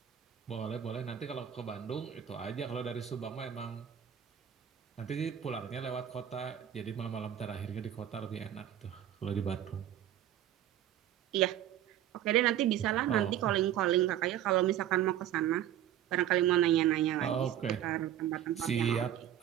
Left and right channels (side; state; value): left; quieter; 11.0 dB